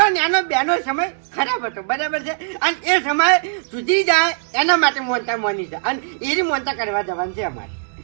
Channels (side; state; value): left; silent; digital silence